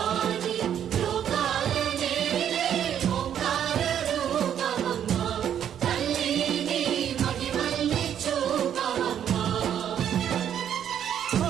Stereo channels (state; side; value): quieter; left; 9.5 dB